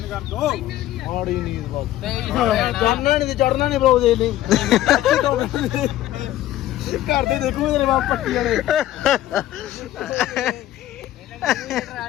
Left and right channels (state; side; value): quieter; right; 13.9 dB